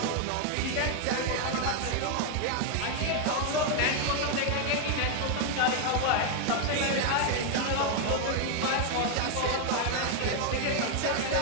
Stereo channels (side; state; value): both; different; correlation 0.00